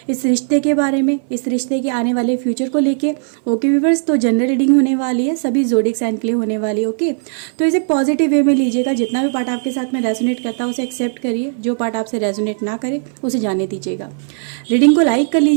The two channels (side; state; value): left; silent; 59 dB below the other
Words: इस रिश्ते के बारे में, इस रिश्ते के आने वाले फ्यूचर को लेके। ओके व्यूअर्स, तो जनरल रीडिंग होने वाली है, सभी ज़ोडिएक साइन के लिए होने वाली है। ओके, तो इसे पॉजिटिव वे में लीजिएगा। जितना भी पार्ट आपके साथ में रेजोनेट करता है उसे एक्सेप्ट करिए, जो पार्ट आपसे रेजोनेट ना करे उसे जाने दीजिएगा। रीडिंग को लाइक कर